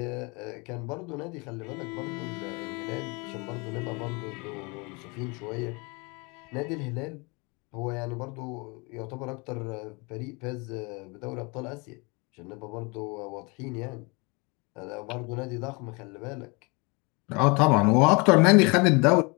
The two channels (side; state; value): right; quieter; 29.0 dB